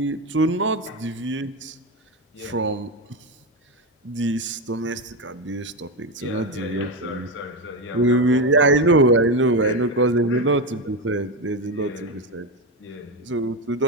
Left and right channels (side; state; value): both; normal; correlation 0.14